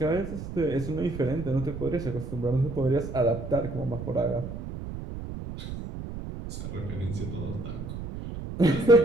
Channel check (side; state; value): right; noise; rumble, 8 dB below the sound